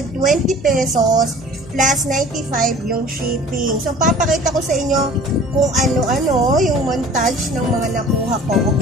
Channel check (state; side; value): noise; left; hum, 21 dB below the sound